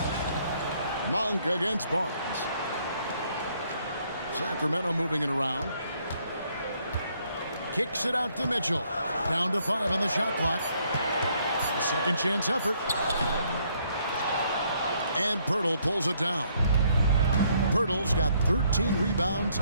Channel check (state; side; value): inverted; both; correlation -0.69